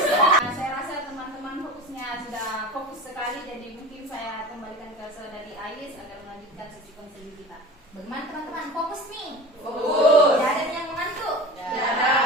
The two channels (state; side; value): normal; both; correlation 0.35